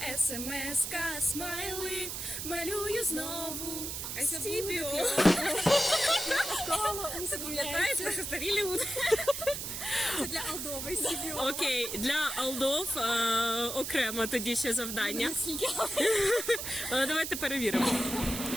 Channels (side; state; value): right; noise; hiss, 5 dB below the sound